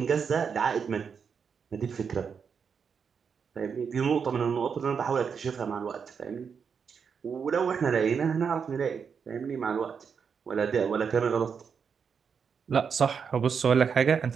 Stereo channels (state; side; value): quieter; left; 6.4 dB